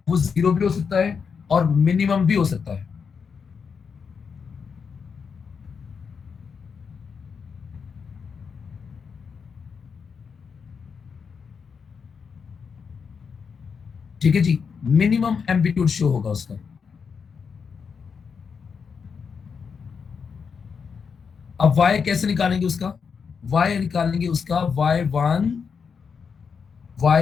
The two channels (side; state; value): right; quieter; 6.0 dB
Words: वो 0 भी हो सकता है और मिनिमम भी हो सकता है। ठीक है जी, मिनिमम एम्पलीट्यूड शो होगा उसका। अब y कैसे निकालेंगे उसका, y निकालेंगे उसका y1